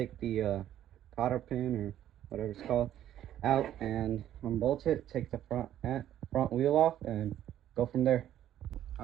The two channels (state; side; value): quieter; left; 11.7 dB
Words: the cotter pin or whatever it's called out and unbolt it. Take the front wheel off and go from there.